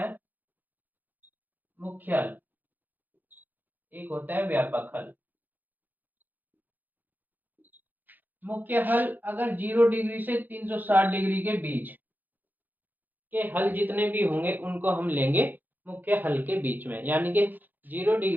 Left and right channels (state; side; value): late; left; 0.086 ms